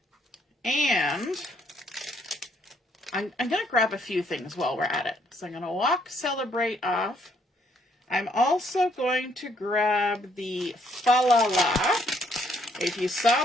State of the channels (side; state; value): both; normal; correlation 0.69